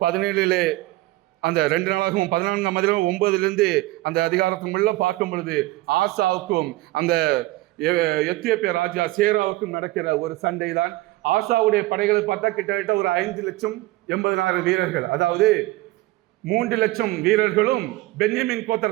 17 அந்த 2 நாளாகவும் 14ஆம் அதிகாரம் 9 அந்த அதிகாரத்துக்குள்ள பார்க்கும் பொழுது ஆசாவுக்கும் அந்த எத்தியோப்பிய ராஜா சேராவுக்கும் நடக்கிற ஒரு சண்டை தான். ஆசாவுடைய படைகளை பார்த்தா கிட்டத்தட்ட ஒரு 5,80,000 வீரர்கள், அதாவது 3 லட்சம் வீரர்களும் பென்யமின்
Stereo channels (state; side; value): quieter; left; 18.6 dB